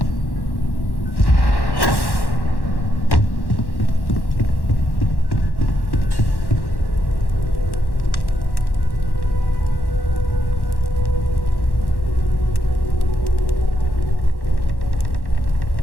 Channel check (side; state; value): right; late; 1.1 ms